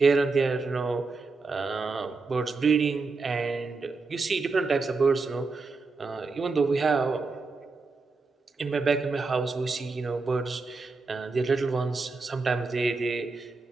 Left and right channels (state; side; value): quieter; left; 4.0 dB